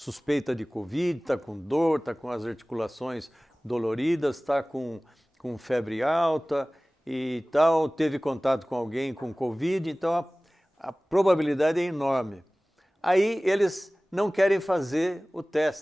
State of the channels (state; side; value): normal; both; correlation 0.98